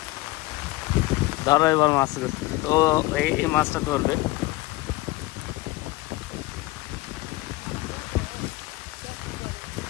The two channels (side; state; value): right; quieter; 19.8 dB